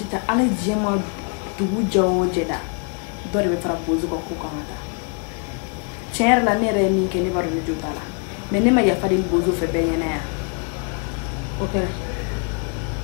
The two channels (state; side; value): quieter; right; 38.5 dB